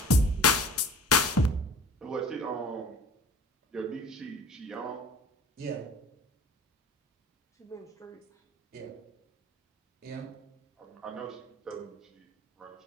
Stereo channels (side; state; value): both; normal; correlation 0.45